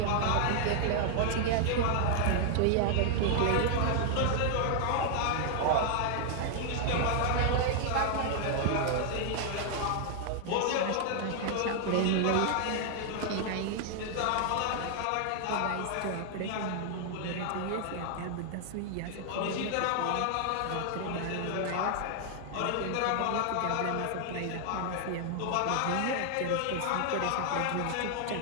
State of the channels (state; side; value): different; both; correlation 0.00